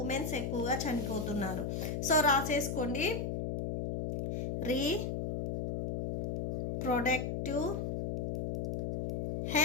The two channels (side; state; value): left; noise; hum, 1 dB below the sound